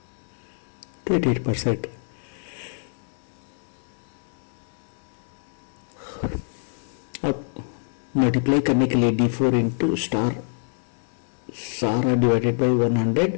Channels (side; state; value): right; silent; 61 dB below the other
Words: %. अब मल्टीप्लाई करने के लिए D4 इंटू स्टार सारा divided by 100